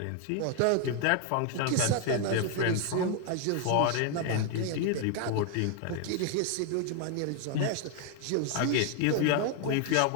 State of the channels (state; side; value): different; both; correlation 0.01